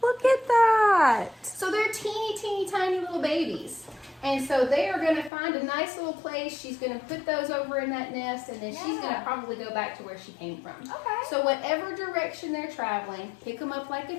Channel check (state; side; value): drops out; right; at 5.3 s